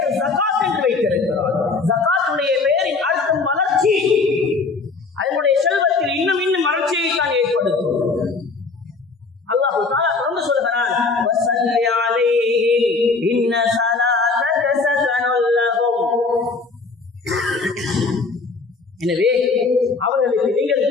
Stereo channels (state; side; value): quieter; right; 4.1 dB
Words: ஜகாத் என்று வைத்திருக்கிறார். ஜகாத்துடைய பெயரின் அர்த்தம் வளர்ச்சி. அதனுடைய செல்வத்தில் இன்னும் இன்னும் வளர்ச்சியை தான் ஏற்படுத்தும். அல்லாஹ் தஆலா தொடர்ந்து சொல்கிறான், வஸல்லி அலைஹிம் இன்ன ஸலாத்தக ஸகனுல் லஹும். எனவே அவர்களுக்கு நீங்கள்